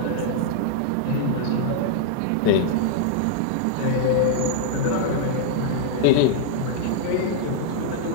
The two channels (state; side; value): different; both; correlation -0.01